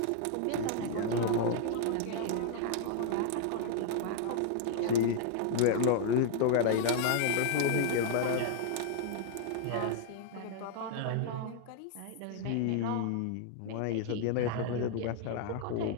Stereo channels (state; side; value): different; both; correlation -0.01